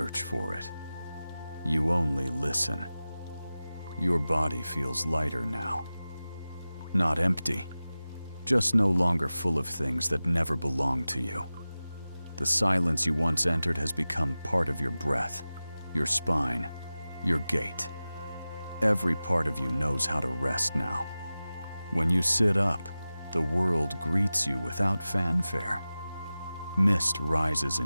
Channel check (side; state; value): both; inverted; correlation -0.96